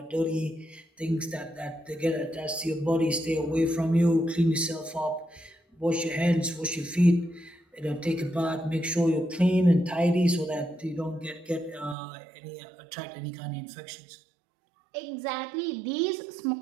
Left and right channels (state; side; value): drops out; left; at 12.0 s